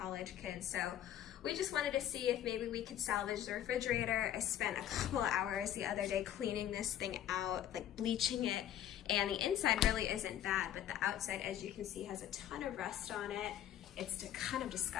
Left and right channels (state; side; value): quieter; right; 11.3 dB